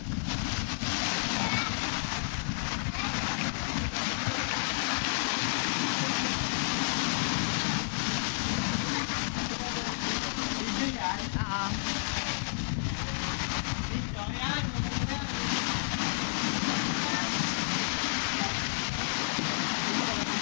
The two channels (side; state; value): right; silent; digital silence